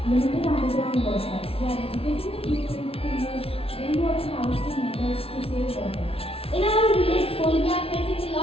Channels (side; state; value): right; late; 0.27 ms